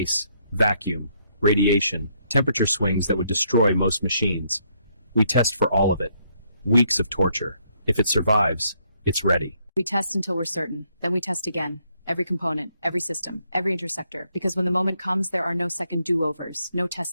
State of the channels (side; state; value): both; inverted; correlation -0.72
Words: vacuum, radiation, temperature swings that would destroy most machines. We test for all of it. Weeks of torture. If it survives, it's ready. We test until we're certain. Then we test again. Every component, every system, every intersector. Because when the moment comes, there are no second do-overs. No